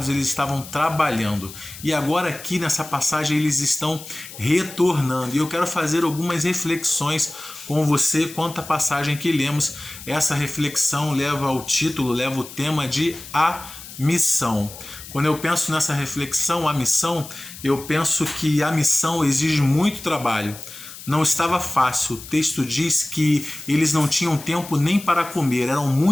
Eles estavam trabalhando. E agora aqui nessa passagem eles estão retornando. E eu quero fazer algumas reflexões com você quanto à passagem que lemos. Essa reflexão leva ao título, leva o tema de A Missão. Quando eu penso nessa reflexão, a missão, eu penso que a missão exige muito trabalho. Não estava fácil. O texto diz que eles não tinham tempo nem para comer. Eram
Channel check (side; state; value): left; noise; hiss, 15 dB below the sound